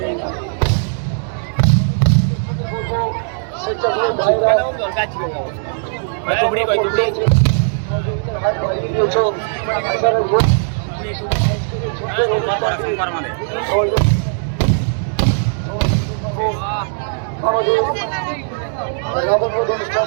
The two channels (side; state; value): left; silent; 65 dB below the other